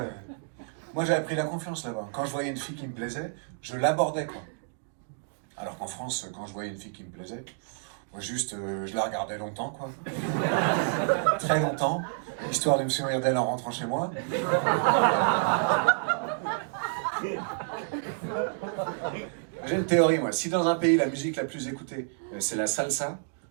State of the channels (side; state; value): left; silent; digital silence